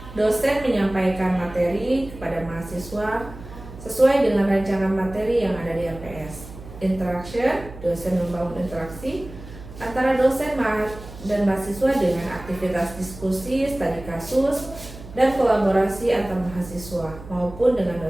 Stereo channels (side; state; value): right; noise; hum, 15 dB below the sound